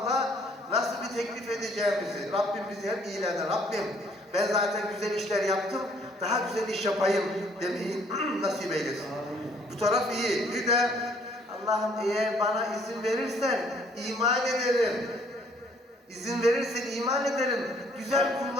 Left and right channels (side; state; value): both; normal; correlation 0.61